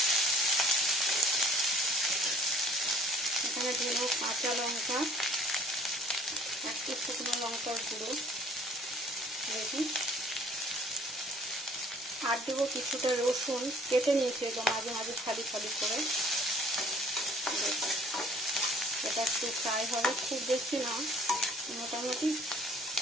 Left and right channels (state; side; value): normal; both; correlation 0.54